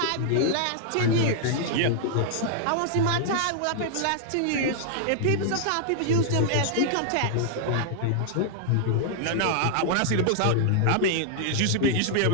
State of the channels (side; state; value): both; different; correlation -0.01